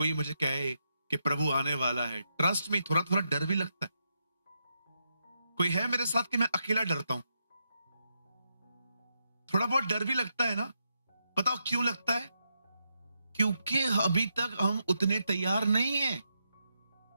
मुझे कहे कि प्रभु आने वाला है, ट्रस्ट में थोड़ा थोड़ा डर भी लगता है। कोई है मेरे साथ कि मैं अकेला डरता हूं? थोड़ा बहुत डर भी लगता है ना। बताओ क्यों लगता है? क्योंकि अभी तक हम उतने तैयार नहीं हैं।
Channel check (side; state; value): both; inverted; correlation -0.83